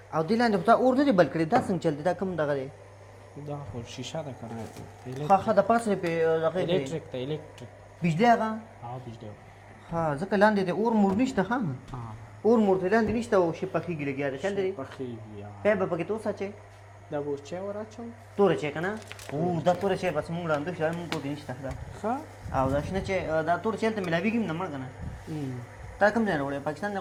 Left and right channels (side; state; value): both; identical; correlation 1.00